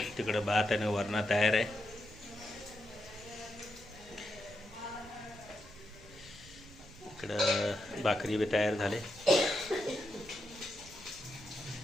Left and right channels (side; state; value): right; noise; rumble, 20 dB below the sound